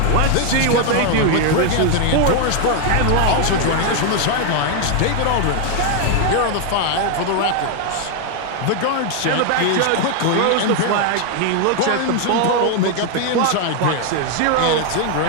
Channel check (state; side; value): different; both; correlation 0.00